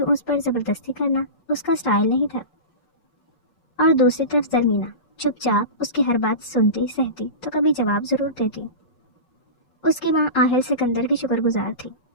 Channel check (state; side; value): late; right; 5.5 ms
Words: اس پر زبردستی کرنا اس کا سٹائل نہیں تھا۔ اور دوسری طرف زرمینہ چپ چاپ اس کی ہر بات سنتی سہتی تو کبھی جواب ضرور دیتی۔ اس کی ماں آہل سکندر کی شکر گزار تھی،